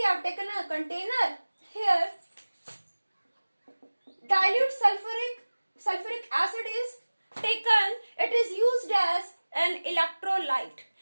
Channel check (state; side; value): inverted; both; correlation -1.00